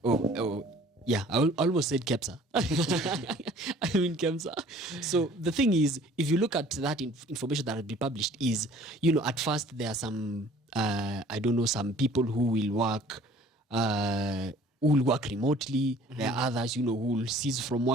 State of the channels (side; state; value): both; normal; correlation 0.52